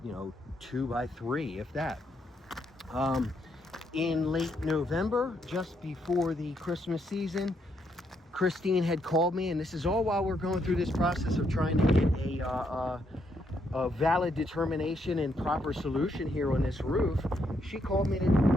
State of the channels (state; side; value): normal; both; correlation 0.76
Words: you know, 2 by 3, if that. In late November, just before the Christmas season, Christine had called me, and this is all while we're going through this process of trying to get a valid determination and proper solution here on this roof. She called me to